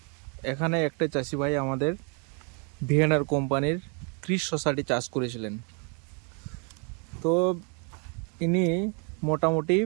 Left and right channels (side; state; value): left; quieter; 37.4 dB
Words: এখানে একটা চাষি ভাই আমাদের ভিএনআর কোম্পানির ক্রিস শসাটি চাষ করেছিলেন। তো ইনি মোটামুটি